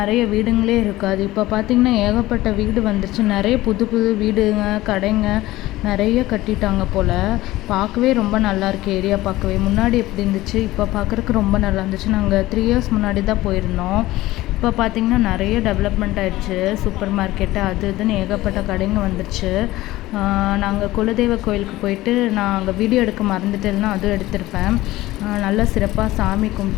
வீடுங்களே இருக்காது. இப்போ பார்த்திங்கன்னா ஏகப்பட்ட வீடு வந்துருச்சு. நிறைய புது புது வீடுங்க, கடைங்க நிறைய கட்டிட்டாங்க போல். பார்க்கவே ரொம்ப நல்லாயிருக்கு ஏரியா பார்க்கவே. முன்னாடி எப்படி இருந்துச்சு, இப்போ பார்க்குறக்கு ரொம்ப நல்லா இருந்துச்சு. நாங்கள் 3 இயர்ஸ் முன்னாடி தான் போயிருந்தோம். இப்போ பார்த்திங்கன்னா நிறைய டெவலப்மெண்ட் ஆகிடுச்சு. சூப்பர் மார்க்கெட்டு அது இதுன்னு ஏகப்பட்ட கடைங்க வந்துருச்சு. நாங்கள் குலதெய்வ கோயிலுக்கு போயிட்டு நான் அங்கே வீடியோ எடுக்க மறந்துட்டேன்னா அதுவும் எடுத்திருப்பேன். நல்லா சிறப்பாக சாமி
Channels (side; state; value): right; quieter; 17.3 dB